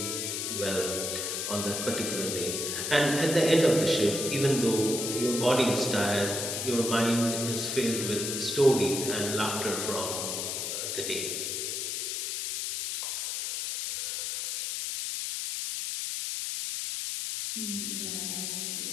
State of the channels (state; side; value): noise; left; hiss, 2 dB below the sound